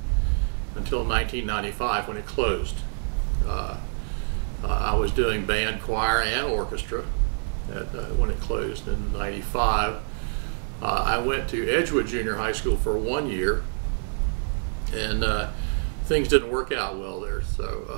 until 1995 when it closed. I was doing band, choir, and orchestra when it closed in 95. I went to Edgewood Junior High School for 1 year, and things didn't work out well there,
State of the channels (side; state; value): left; silent; 61 dB below the other